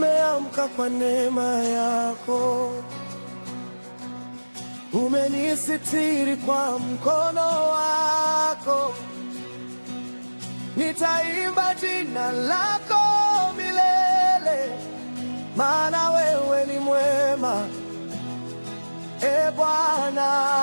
kwa neema yako, umenisitiri kwa mkono wako. Nitaimba jina lako milele, maana wewe ni mwema, e Bwana.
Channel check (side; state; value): both; inverted; correlation -1.00